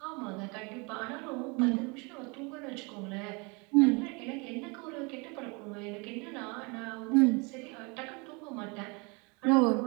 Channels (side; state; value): left; quieter; 30.0 dB